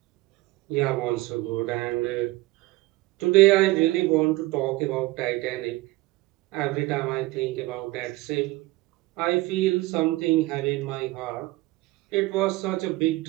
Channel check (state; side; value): quieter; left; 19.9 dB